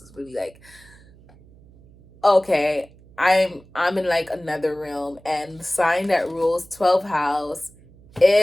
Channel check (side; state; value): right; noise; hum, 25 dB below the sound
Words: really like, okay, I'm in like another realm. And the sign that rules 12th house